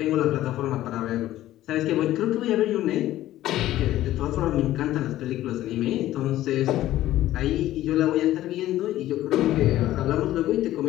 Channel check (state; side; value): quieter; right; 14.3 dB